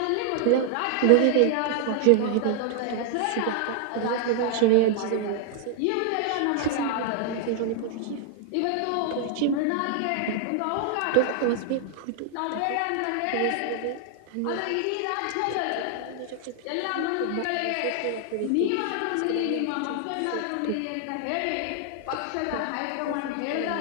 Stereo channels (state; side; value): different; both; correlation -0.01